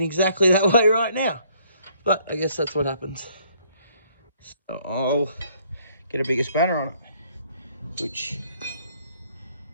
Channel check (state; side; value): inverted; both; correlation -0.65